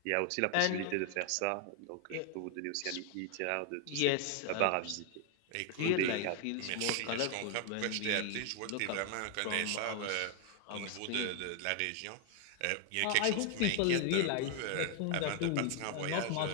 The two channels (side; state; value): both; different; correlation 0.00